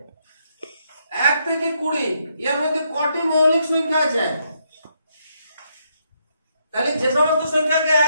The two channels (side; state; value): both; inverted; correlation -0.77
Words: 1 থেকে 20 এর মধ্যে কটি মৌলিক সংখ্যা আছে? তাহলে যে সমস্ত সংখ্যাকে